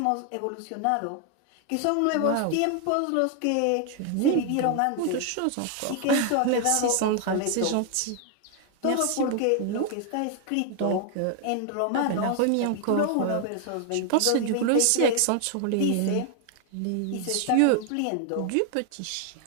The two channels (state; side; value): different; both; correlation 0.00